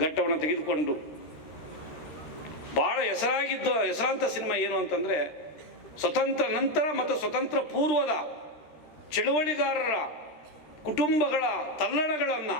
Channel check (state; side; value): late; right; 13 ms